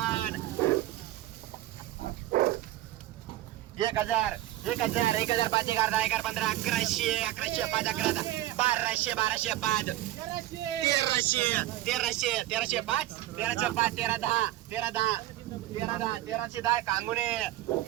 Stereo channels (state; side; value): quieter; left; 15.2 dB